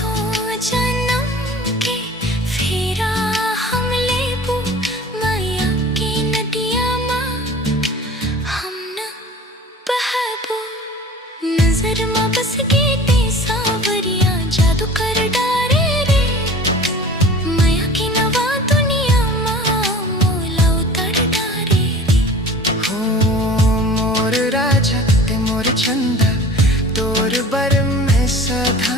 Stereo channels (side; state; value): both; normal; correlation 0.42